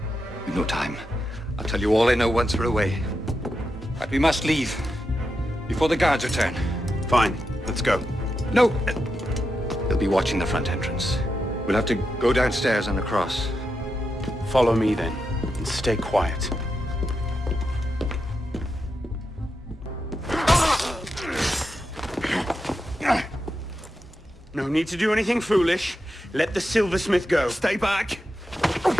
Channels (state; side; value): normal; both; correlation 0.87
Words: We've no time. I'll tell you all I know once we're away. But we must leave. Before the guards return. Fine. Let's go. No! They'll be watching the front entrance. We'll have to go downstairs and across. Follow me, then. And stay quiet. No need to do anything foolish. Let the silversmith go. Stay back!